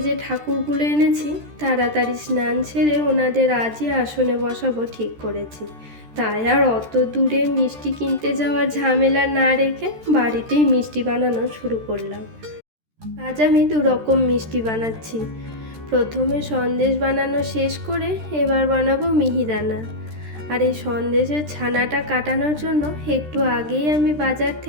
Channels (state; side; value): late; left; 13 ms